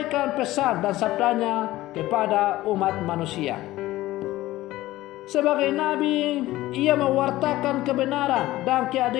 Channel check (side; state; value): right; quieter; 16.7 dB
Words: pesan dan sabdanya kepada umat manusia. Sebagai nabi, ia mewartakan kebenaran dan